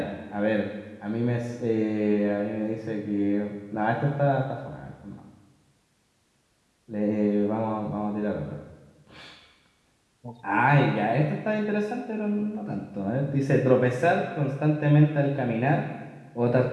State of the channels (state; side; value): identical; both; correlation 1.00